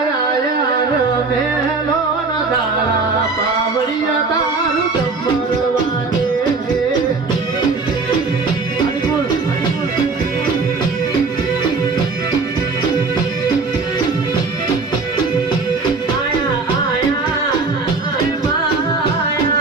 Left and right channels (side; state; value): left; quieter; 4.1 dB